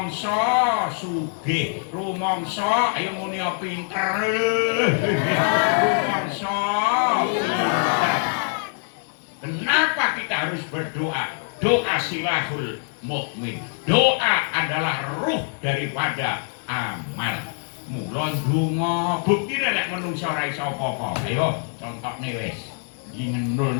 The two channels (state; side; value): silent; right; 58 dB below the other